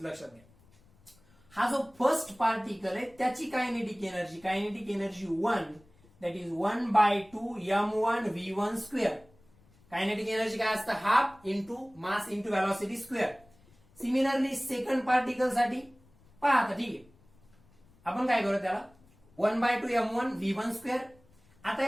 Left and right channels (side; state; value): left; noise; rumble, 29 dB below the sound